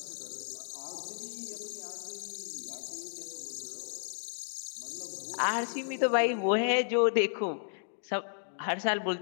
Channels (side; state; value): right; silent; digital silence